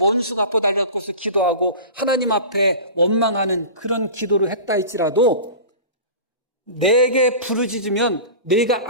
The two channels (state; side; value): inverted; both; correlation -0.34